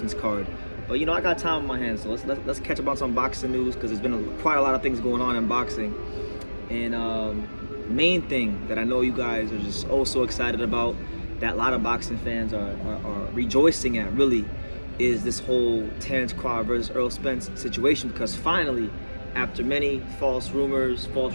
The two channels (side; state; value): both; inverted; correlation -1.00